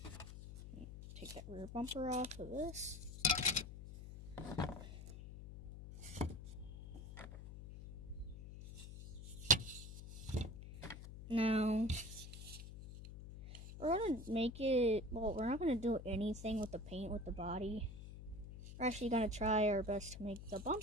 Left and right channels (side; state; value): left; noise; hum, 11 dB below the sound